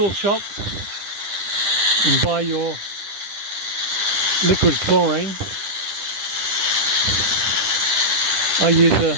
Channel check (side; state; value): left; late; 10 ms